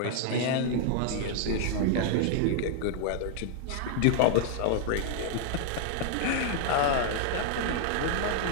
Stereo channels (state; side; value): different; both; correlation -0.01